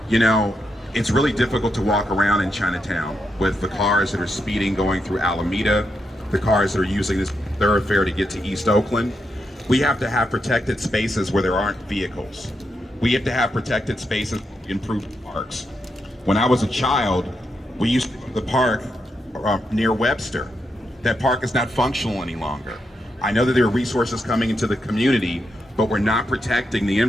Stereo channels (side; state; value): both; normal; correlation 0.83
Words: You know, it's really difficult to walk around in Chinatown with the cars that are speeding going through Alameda, the cars that are using this thoroughfare to get to East Oakland. We have to have protected spaces where there aren't vehicles. We have to have protected spaces to improve parks. When I was a child, we used to go to the park near Webster. That park is not functional any longer. I know that there are resources coming into the community, but we're not protecting the